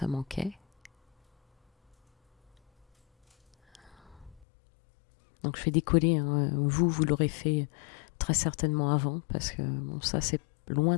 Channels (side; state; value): right; drops out; at 4.5 s